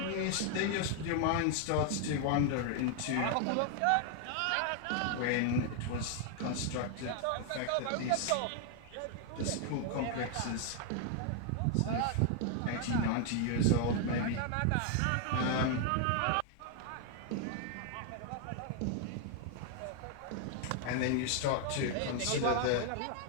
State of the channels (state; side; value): different; both; correlation 0.00